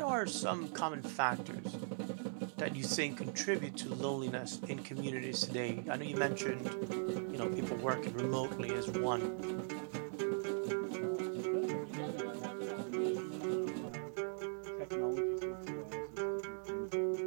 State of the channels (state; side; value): silent; left; 51 dB below the other